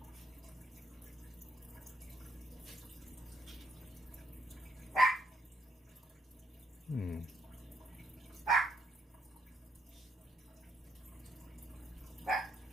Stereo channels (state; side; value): normal; both; correlation 0.74